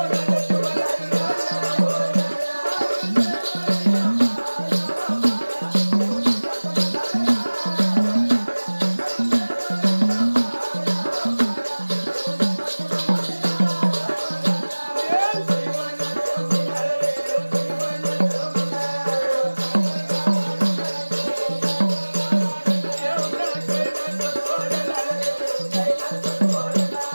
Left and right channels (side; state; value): both; inverted; correlation -1.00